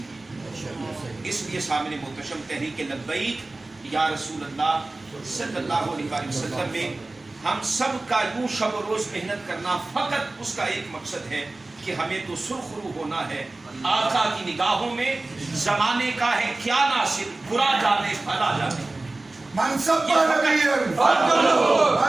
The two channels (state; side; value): quieter; left; 3.0 dB